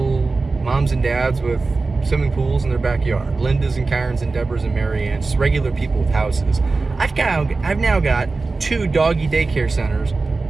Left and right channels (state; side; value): quieter; left; 3.8 dB